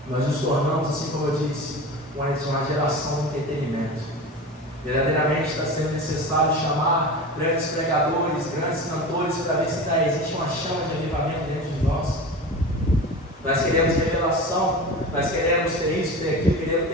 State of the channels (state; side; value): normal; both; correlation 0.31